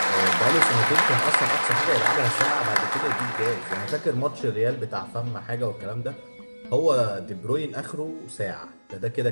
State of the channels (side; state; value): both; inverted; correlation -1.00